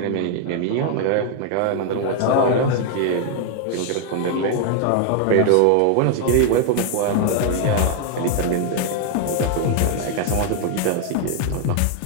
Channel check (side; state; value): both; different; correlation 0.00